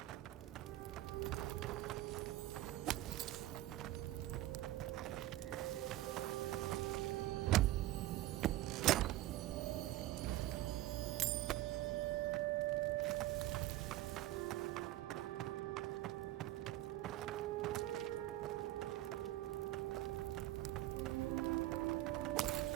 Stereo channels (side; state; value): left; quieter; 15.6 dB